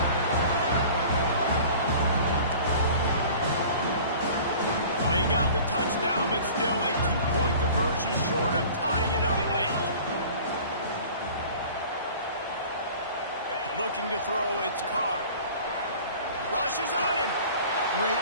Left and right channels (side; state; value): both; inverted; correlation -0.44